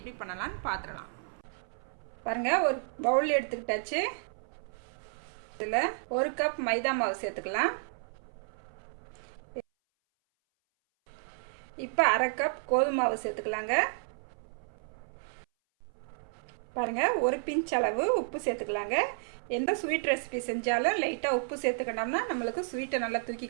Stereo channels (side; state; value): left; silent; 56 dB below the other